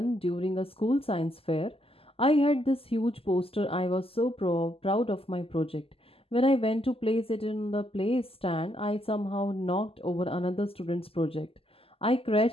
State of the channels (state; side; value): late; right; 0.28 ms